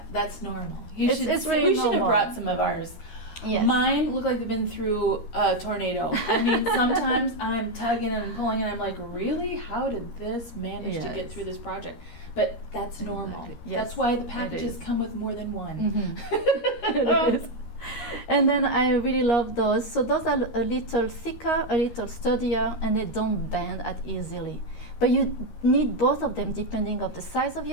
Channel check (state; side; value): late; right; 13 ms